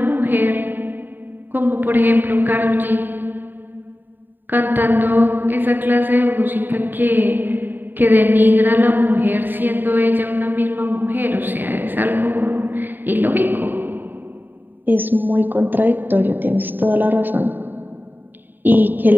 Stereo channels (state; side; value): late; left; 0.092 ms